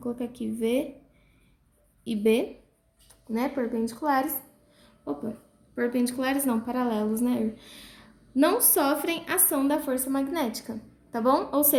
aqui V e B, né, perpendiculares não, paralelos, né, não sofrem ação da força magnética, tá bom? Ou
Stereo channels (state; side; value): identical; both; correlation 1.00